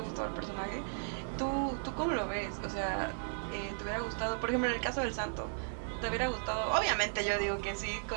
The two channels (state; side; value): silent; left; digital silence